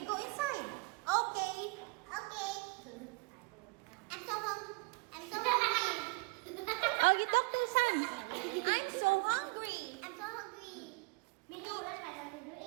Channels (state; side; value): quieter; left; 27.6 dB